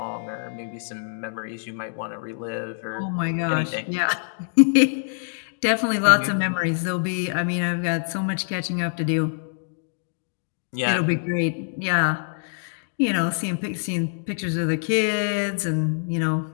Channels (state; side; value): silent; right; digital silence